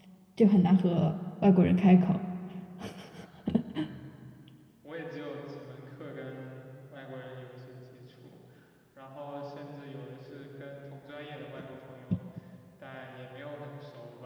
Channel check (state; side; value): identical; both; correlation 1.00